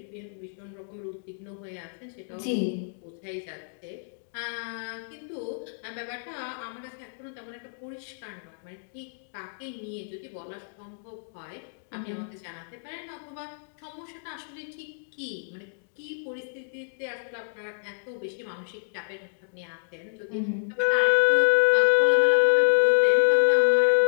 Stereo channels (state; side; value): silent; right; digital silence